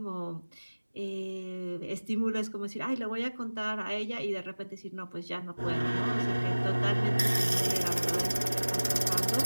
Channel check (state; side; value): inverted; both; correlation -1.00